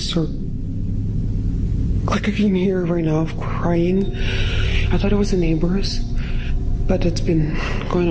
like I can hear right now of crying. I thought it was the neighbors, but it's been going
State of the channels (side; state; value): both; identical; correlation 1.00